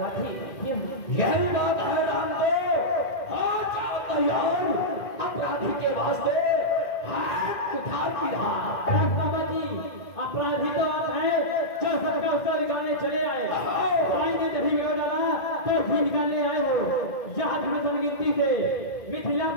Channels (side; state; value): right; late; 2.0 ms